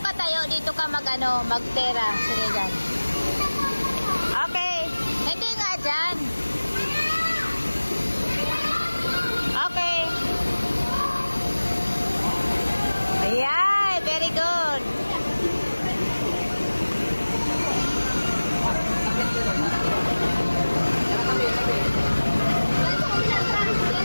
ka tayo, dito ka magtera. Sige dyan. Okay, hindi nga dyan. Okay. Ayan, very good.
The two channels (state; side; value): inverted; both; correlation -1.00